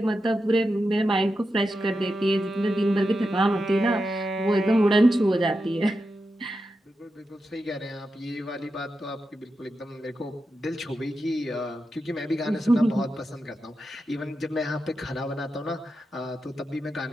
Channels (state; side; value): normal; both; correlation 0.89